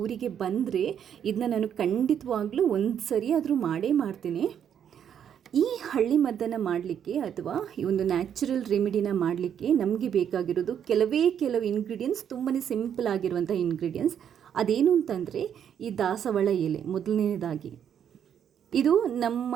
ಊರಿಗೆ ಬಂದರೆ ಇದನ್ನ ನಾನು ಖಂಡಿತವಾಗ್ಲೂ ಒಂದು ಸರಿ ಆದರೂ ಮಾಡೇ ಮಾಡ್ತೀನಿ. ಈ ಹಳ್ಳಿ ಮದ್ದನ್ನು ಮಾಡಲಿಕ್ಕೆ ಅಥವಾ ಈ ಒಂದು ನ್ಯಾಚುರಲ್ ರೆಮಿಡಿನ ಮಾಡಲಿಕ್ಕೆ ನಮಗೆ ಬೇಕಾಗಿರೋದು ಕೆಲವು ಇಂಗ್ರೀಡಿಯೆಂಟ್ಸ್, ತುಂಬಾ ಸಿಂಪಲ್ ಆಗಿರುವಂಥ ಇಂಗ್ರೀಡಿಯೆಂಟ್ಸ್. ಅದೇನು ಅಂತಂದರೆ ಈ ದಾಸವಾಳ ಎಲೆ. ಮೊದಲನೇದಾಗಿ ಇದು ನಮ್ಮ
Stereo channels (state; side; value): quieter; left; 8.8 dB